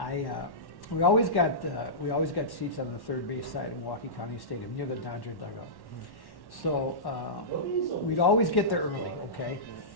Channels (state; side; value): late; right; 1.1 ms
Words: we always got seats on the third base side of Milwaukee County Stadium near the Dodger dugout. So we'd always get there early, okay?